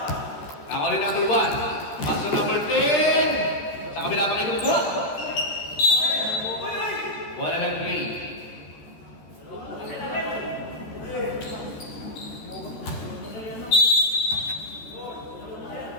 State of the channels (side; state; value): right; late; 13 ms